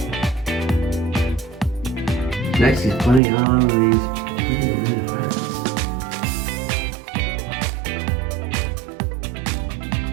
Next, he's putting on these pretty red hearts.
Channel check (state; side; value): drops out; left; at 3.2 s